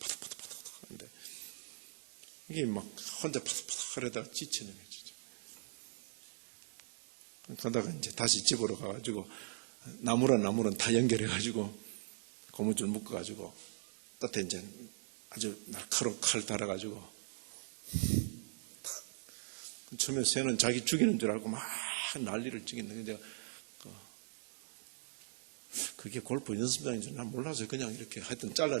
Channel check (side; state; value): left; silent; 51 dB below the other